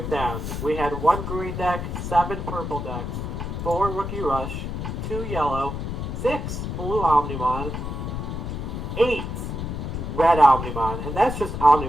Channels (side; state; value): left; noise; rumble, 4 dB below the sound